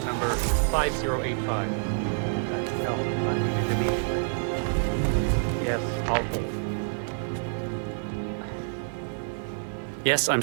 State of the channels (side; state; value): left; silent; digital silence